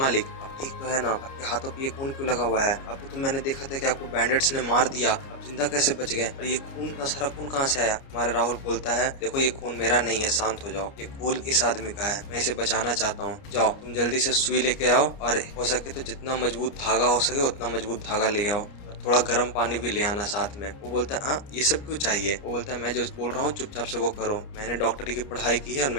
आप ठीक तो है ना? आपके हाथों पे ये खून क्यों लगा हुआ है? आपको तो मैंने देखा था कि आपको बैंडेट्स ने मार दिया, आप जिंदा कैसे बच गए? और ये खून का सारा खून कहाँ से आया? हमारा राहुल बोलता है देखो ये खून मेरा नहीं है, शांत हो जाओ। ये खून इस आदमी का है, मैं इसे बचाना चाहता हूँ। जाओ तुम जल्दी से सुई लेके आओ, और हो सके तो जितना मजबूत धागा हो सके उतना मजबूत धागा ले आओ, और थोड़ा गर्म पानी भी ले आना साथ में। वो बोलता है हाँ ये सब क्यों चाहिए? वो बोलता है मैं जो बोल रहा हूँ चुपचाप से वो करो। मैंने डॉक्टरी की पढ़ाई की है और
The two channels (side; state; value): right; late; 30 ms